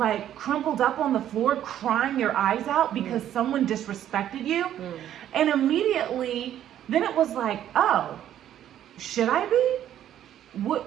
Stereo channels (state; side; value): quieter; left; 11.1 dB